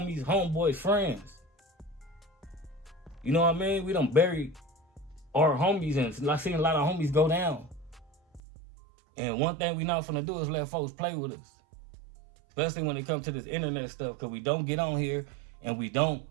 homeboys, friends. You know what I mean? We done buried our homies, and I've seen a lot of homies go down. And one thing we not finna do is let folks play with us. Especially when it comes to this internet stuff, because we don't get on here and we don't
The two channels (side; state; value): left; drops out; at 8.4 s